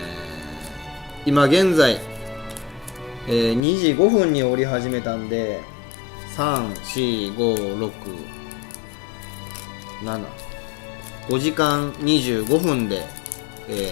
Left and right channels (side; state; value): right; drops out; at 3.6 s